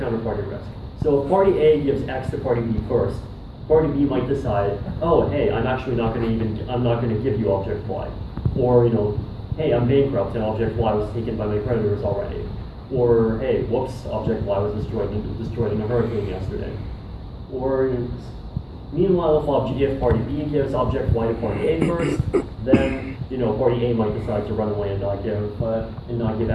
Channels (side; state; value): both; identical; correlation 1.00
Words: risk. So if party A gives X to party B first, party B might decide, oh, hey, I'm not going to give you object Y. Or, hey, I'm bankrupt and object Y was taken by my creditors already. Or, hey, whoops, object Y was destroyed in a hurricane yesterday. Or, meanwhile, if party B gives object Y to party A first, then party A might decide to run away and not give